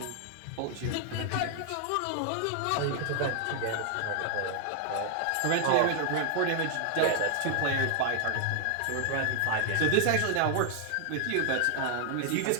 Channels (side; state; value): both; different; correlation 0.00